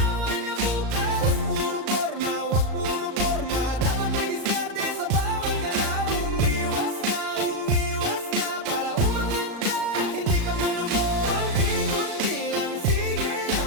na bukas. Wag puro forma, dapat may diskarte sa bawat galaw. Umiwas ka, para umangat ka, hindi ka malubog. Kunti-kunti lang, sige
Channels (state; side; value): late; left; 36 ms